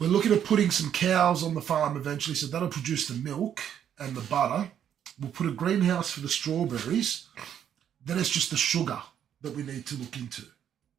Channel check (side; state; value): left; quieter; 9.4 dB